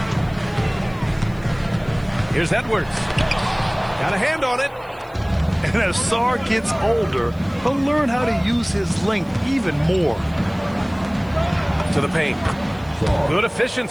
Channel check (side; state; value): right; noise; hiss, 29 dB below the sound